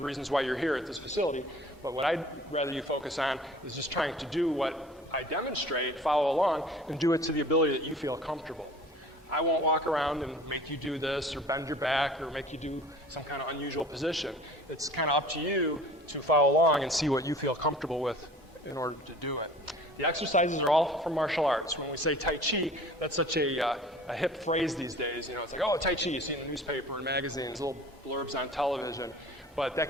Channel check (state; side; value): normal; both; correlation 0.46